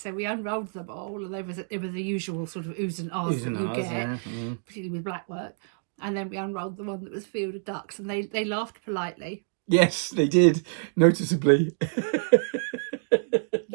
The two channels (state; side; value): silent; left; digital silence